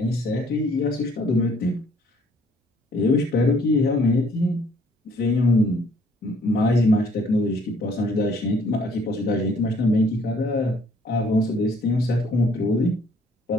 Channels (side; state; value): both; normal; correlation 0.61